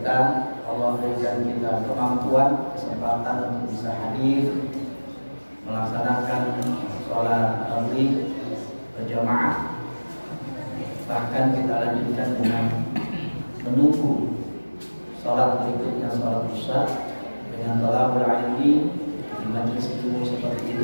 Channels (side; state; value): both; inverted; correlation -1.00